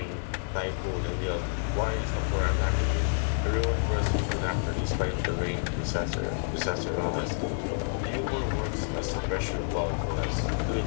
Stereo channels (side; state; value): right; silent; digital silence